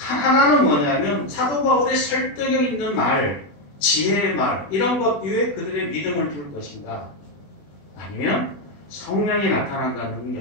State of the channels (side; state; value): right; late; 21 ms